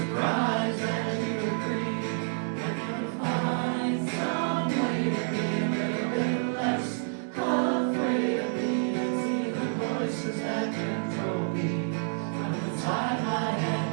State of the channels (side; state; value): left; silent; digital silence